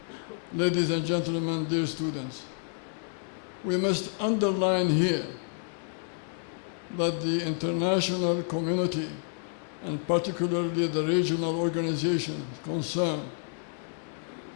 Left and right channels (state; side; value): silent; right; 58 dB below the other